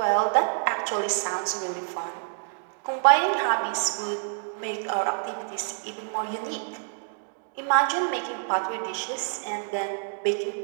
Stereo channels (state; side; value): silent; left; digital silence